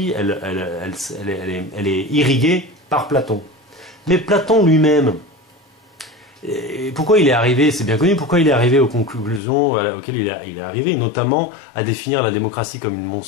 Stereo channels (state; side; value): drops out; right; at 9.4 s